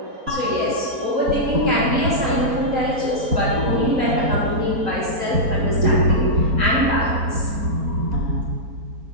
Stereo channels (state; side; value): late; left; 4.4 ms